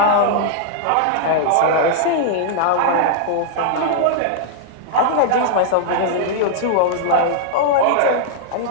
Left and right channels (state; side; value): different; both; correlation -0.01